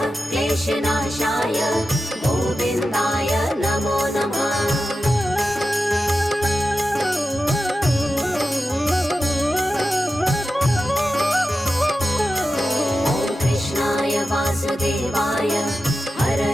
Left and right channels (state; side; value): normal; both; correlation 0.92